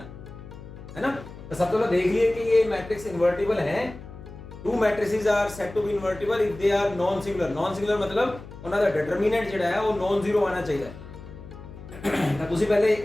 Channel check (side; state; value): left; noise; hum, 15 dB below the sound